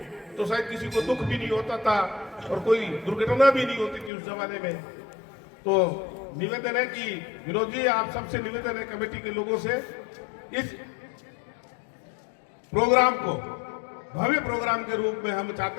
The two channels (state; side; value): drops out; right; at 4.1 s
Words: तो शायद किसी को दुख भी नहीं होता था और कोई दुर्घटना भी नहीं होती थी उस जमाने में। तो निवेदन है कि विनोद जी, आप सबसे निवेदन है, कमेटी के लोगों से, इस प्रोग्राम को भव्य प्रोग्राम के रूप में हम